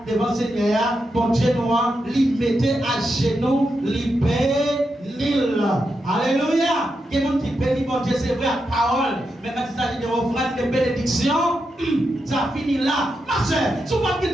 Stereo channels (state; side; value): normal; both; correlation 0.86